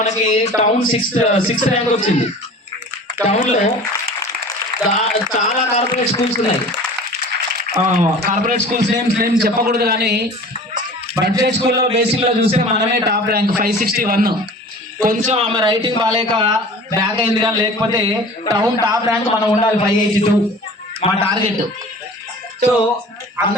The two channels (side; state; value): both; normal; correlation 0.42